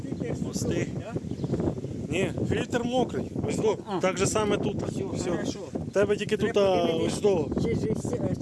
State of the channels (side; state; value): both; identical; correlation 1.00